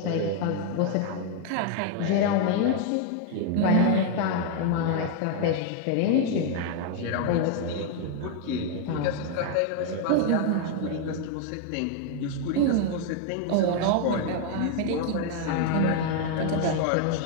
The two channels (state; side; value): different; both; correlation 0.00